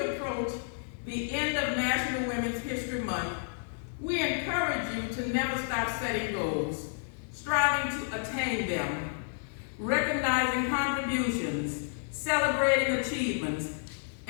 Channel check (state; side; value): silent; right; digital silence